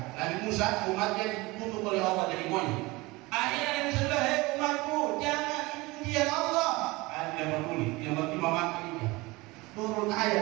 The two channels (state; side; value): quieter; left; 22.4 dB